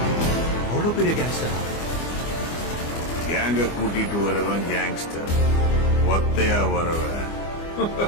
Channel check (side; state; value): right; late; 24 ms